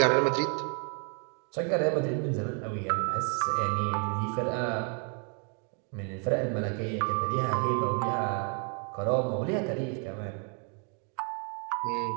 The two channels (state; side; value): quieter; left; 39.6 dB